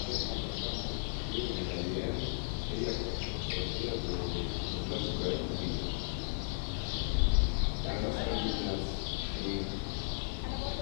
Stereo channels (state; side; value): silent; right; digital silence